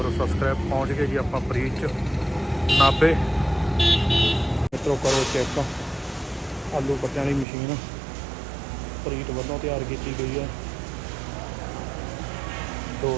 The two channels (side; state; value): left; drops out; at 7.5 s